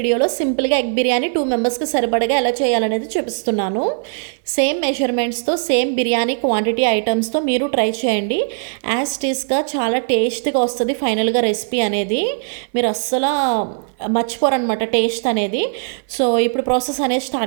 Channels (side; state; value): left; silent; 58 dB below the other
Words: సింపుల్గా ఎగ్ బిర్యానీ 2 మెంబర్స్కి సరిపడగా ఎలా చేయాలనేది చూపిస్తున్నాను. సేమ్ మెజర్మెంట్స్తో సేమ్ బిర్యానీ క్వాంటిటీ ఐటమ్స్తో మీరు ట్రై చేయండి. యాజ్ టీస్గా చాలా టేస్ట్గా వస్తుంది ఫైనల్గా రెసిపీ అనేది. మీరు అస్సలు మర్చిపోరనమాట టేస్ట్ అనేది. సో ఇప్పుడు ప్రాసెస్ అనేది